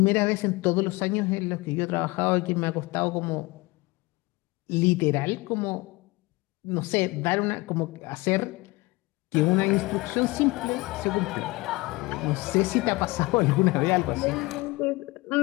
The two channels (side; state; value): right; quieter; 22.8 dB